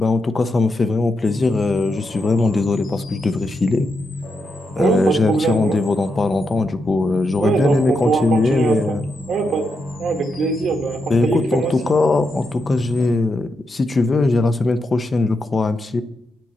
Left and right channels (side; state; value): both; normal; correlation 0.84